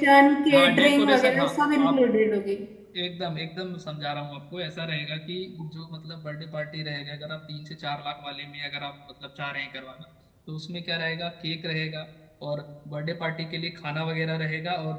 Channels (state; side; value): identical; both; correlation 1.00